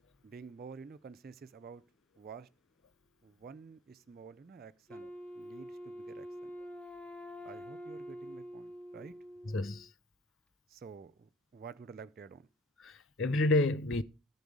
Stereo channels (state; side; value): normal; both; correlation 0.46